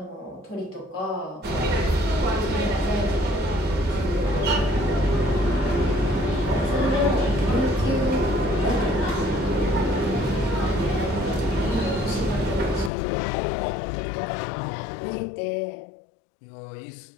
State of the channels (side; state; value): right; drops out; at 12.9 s